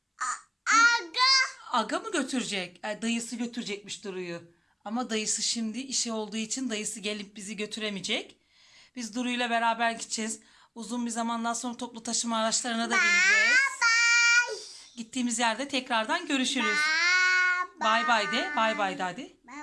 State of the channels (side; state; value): both; identical; correlation 1.00